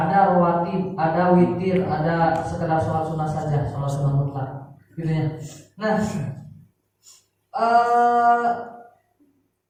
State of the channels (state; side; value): identical; both; correlation 1.00